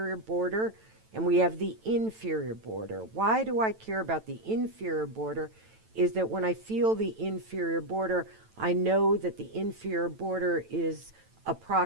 border and we have the inferior border. Why do I care about the inferior border? Is that when I feel the inferior border, I know that the inferior border is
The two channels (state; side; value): late; left; 9.1 ms